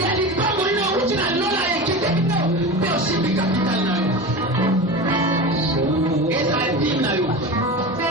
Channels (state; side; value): normal; both; correlation 0.27